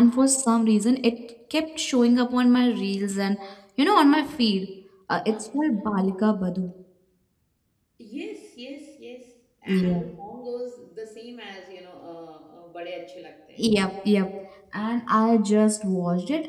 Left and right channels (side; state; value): both; identical; correlation 1.00